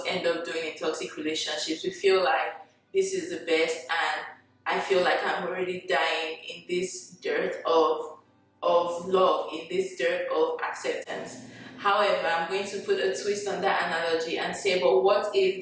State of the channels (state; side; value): identical; both; correlation 1.00